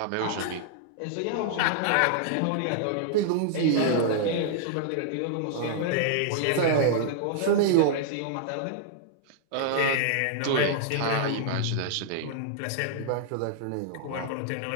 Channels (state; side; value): different; both; correlation -0.01